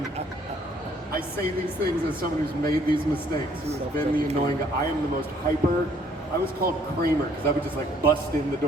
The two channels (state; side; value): normal; both; correlation 0.63